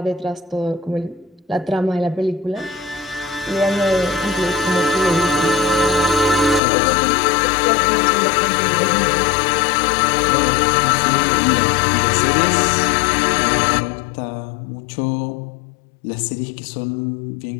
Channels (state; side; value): drops out; right; at 6.6 s